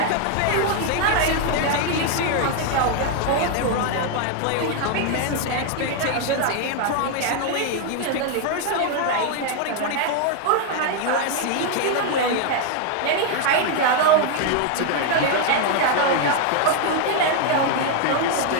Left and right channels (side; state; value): both; different; correlation 0.00